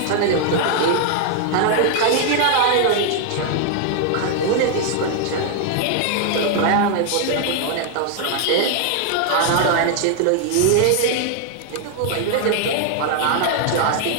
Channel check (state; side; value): different; both; correlation 0.00